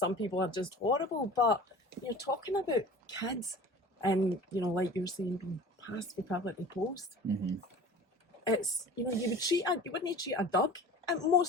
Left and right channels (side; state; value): both; normal; correlation 0.40